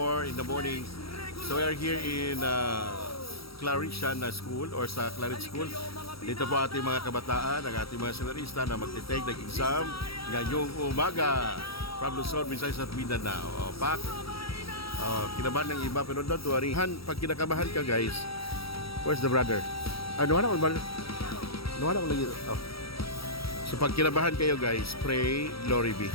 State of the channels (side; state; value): right; late; 0.75 ms